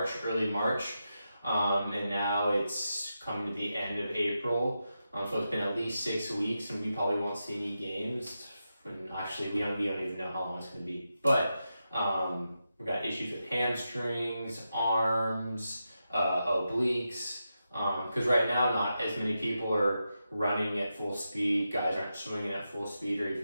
early March, and now it's coming to the end of April. So it's been at least 6 weeks, and we probably won't see any games. And actually, we don't even know how long it's going to be. But we've got issues with hamstrings, arms, obliques, because right now not as many people are running at full speed. Guys aren't swinging at full speed or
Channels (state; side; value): inverted; both; correlation -0.88